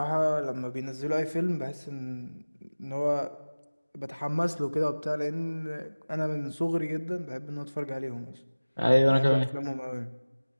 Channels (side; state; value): both; inverted; correlation -1.00